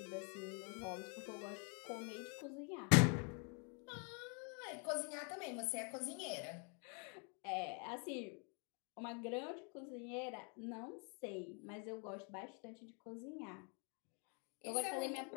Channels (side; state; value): right; quieter; 36.6 dB